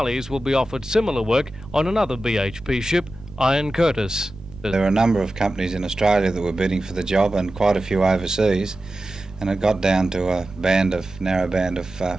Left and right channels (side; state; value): right; noise; rumble, 19 dB below the sound